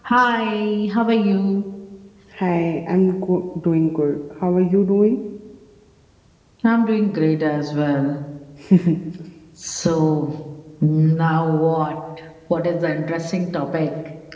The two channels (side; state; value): both; identical; correlation 1.00